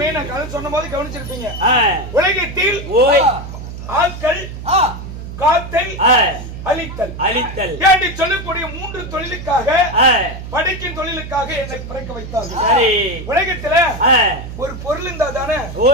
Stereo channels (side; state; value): right; noise; hum, 10 dB below the sound